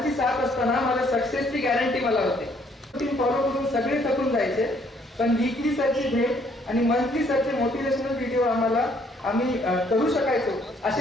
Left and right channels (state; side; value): normal; both; correlation 0.65